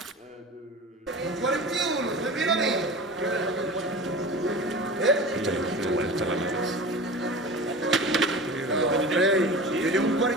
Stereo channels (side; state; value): both; normal; correlation 0.34